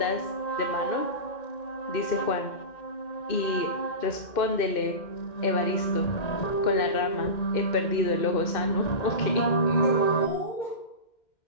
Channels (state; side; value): late; right; 2.1 ms